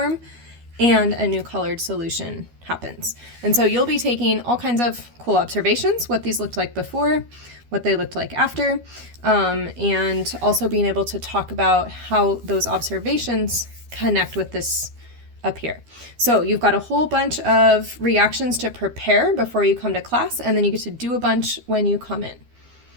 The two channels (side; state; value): left; late; 12 ms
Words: and a new colored solution happens. And so you'll be taking all kinds of cool observations, what these looked like before, what they looked like after, and also being able to talk about how those observations connect with this up here. So you've got a whole bunch of reactions to prepare before you come to class, and then you get to do a bunch when you come in.